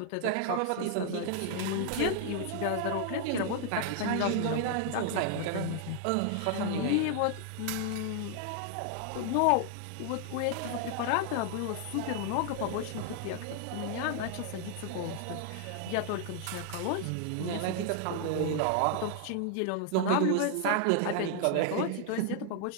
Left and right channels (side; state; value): both; different; correlation 0.00